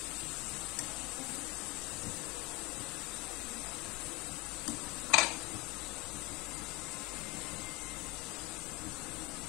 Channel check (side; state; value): right; quieter; 24.4 dB